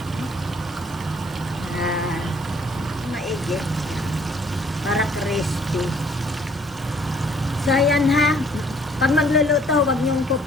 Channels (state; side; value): normal; both; correlation 0.61